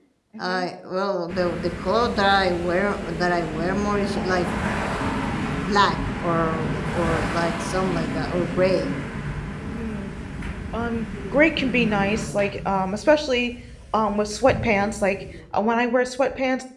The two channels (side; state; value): both; identical; correlation 1.00